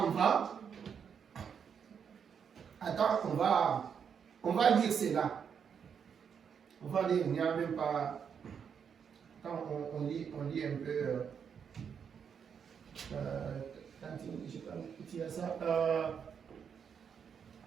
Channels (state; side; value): quieter; left; 7.2 dB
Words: va, attends, on va lire cela. On va lire, il n'y a même pas... Quand on lit un peu...